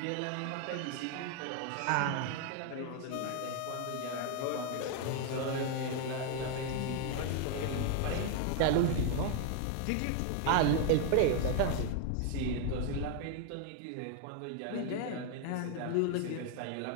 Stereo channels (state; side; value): different; both; correlation 0.00